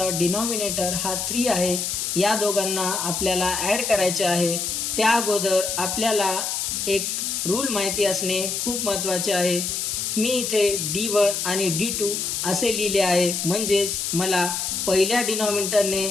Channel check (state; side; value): noise; left; hiss, 2 dB below the sound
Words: डिनॉमिनेटर हा 3 आहे. या दोघांना आपल्याला ॲड करायचे आहे. त्या अगोदर आपल्याला एक रूल माहिती असणे खूप महत्त्वाचे आहे. मी इथे D1 आणि D2 असे लिहिले आहे, म्हणजेच मला पहिल्या डिनॉमिनेटरने